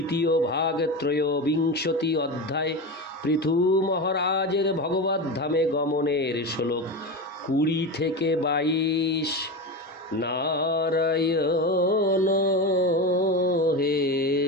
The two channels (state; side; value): normal; both; correlation 0.21